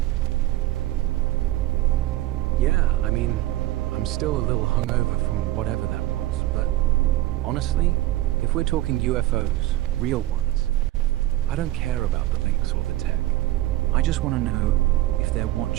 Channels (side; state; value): left; quieter; 16.0 dB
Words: Yeah, I mean, I'm still a little hungover from whatever that was, but honestly, if we're talking UFOs, real ones, I don't care about the links or the tech. I just want to know if they're